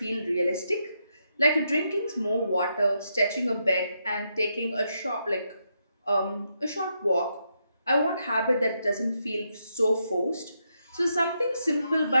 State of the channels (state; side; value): inverted; both; correlation -0.81